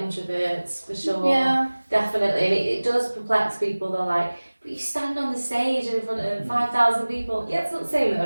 introverts, for sure. Yeah. Definitely. And it does perplex people. They're like, But you stand on the stage in front of 5,000 people. Yeah, it's not the same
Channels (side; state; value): both; inverted; correlation -1.00